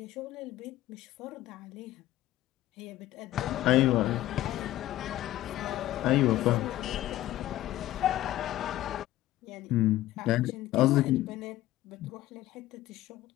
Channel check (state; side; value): quieter; right; 14.9 dB